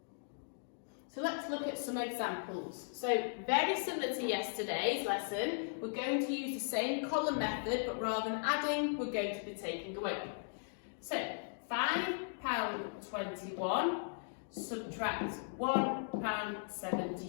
So let's look at some examples. So very similar to yesterday's lesson, we're going to use the same column method, but rather than adding, we're going to be taking away. So £5.21 subtract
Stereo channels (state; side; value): silent; right; digital silence